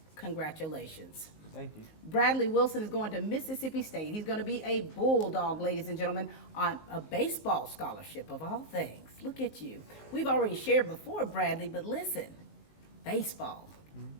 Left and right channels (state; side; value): late; right; 19 ms